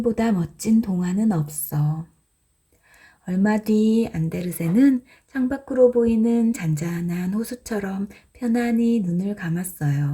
멋진 동화는 없어. 얼마 뒤 안데르센은 창밖으로 보이는 잔잔한 호수처럼 편안히 눈을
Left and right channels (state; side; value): identical; both; correlation 1.00